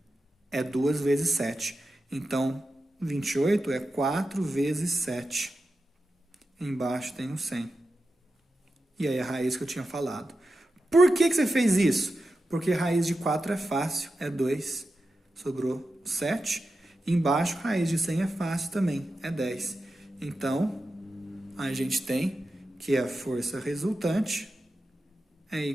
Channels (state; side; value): normal; both; correlation 0.91